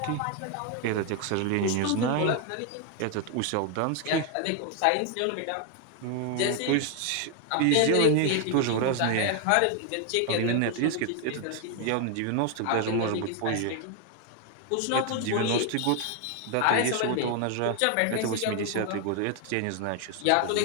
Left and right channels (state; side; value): different; both; correlation 0.01